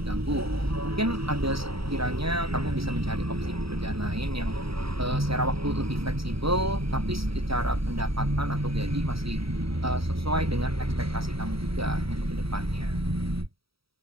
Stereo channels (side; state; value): left; late; 0.76 ms